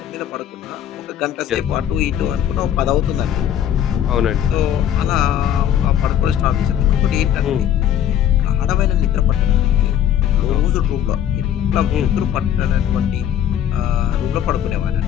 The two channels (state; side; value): quieter; right; 10.3 dB